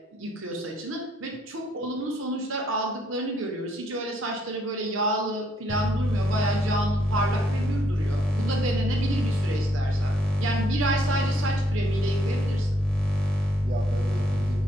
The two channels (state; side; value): normal; both; correlation 0.71